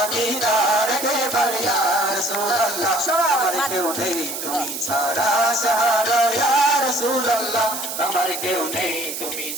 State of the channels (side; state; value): right; noise; hiss, 6 dB below the sound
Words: দিদার কেবার ইয়া রাসূলুল্লাহ আমার কেউ নেই তুমি ছাড়া সাহারা ইয়া রাসূলুল্লাহ আমার কেউ নেই তুমি